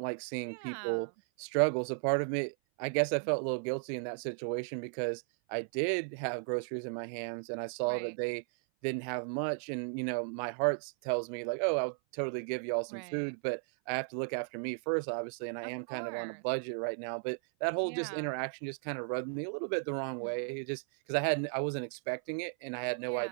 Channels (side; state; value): left; silent; 54 dB below the other